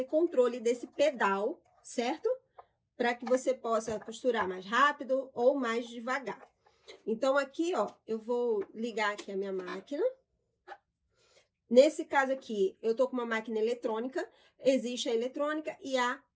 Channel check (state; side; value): identical; both; correlation 1.00